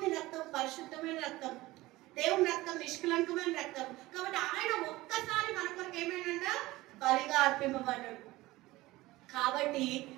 రక్తం పరిశుద్ధమైన రక్తం, దేవుని రక్తం నిష్కలంకమైన రక్తం. కాబట్టి ఆయన ఒక్కసారి మన కొరకు ఏమైనా బలిగా అర్పింపబడ్డాడు. కాబట్టి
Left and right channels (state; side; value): quieter; left; 18.8 dB